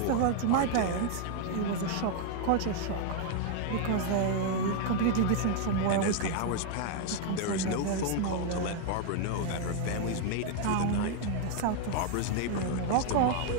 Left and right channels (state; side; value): different; both; correlation 0.00